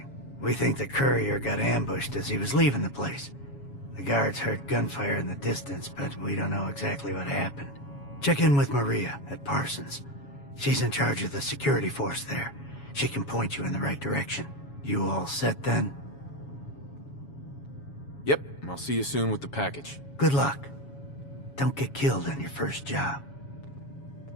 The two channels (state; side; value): late; right; 7.2 ms